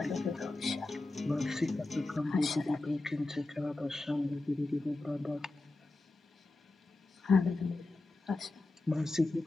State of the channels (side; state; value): right; quieter; 3.0 dB